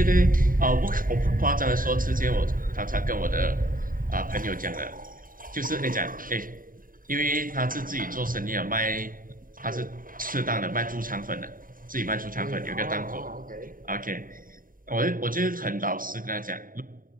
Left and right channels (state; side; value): late; left; 0.41 ms